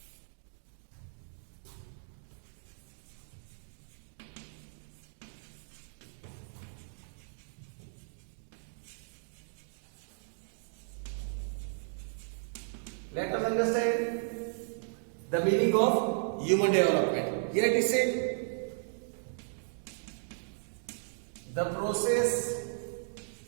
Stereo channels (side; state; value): left; silent; digital silence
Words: Let us understand the meaning of human development. Here it is said, the process